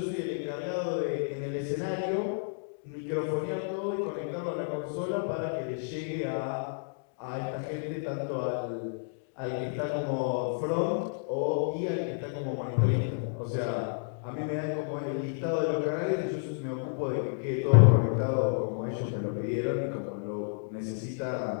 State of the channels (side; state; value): right; silent; digital silence